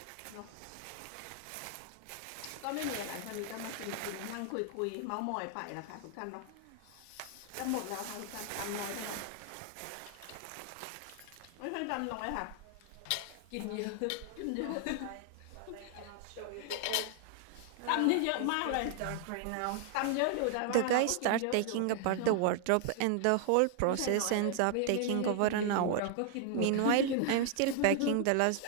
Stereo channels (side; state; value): both; different; correlation 0.00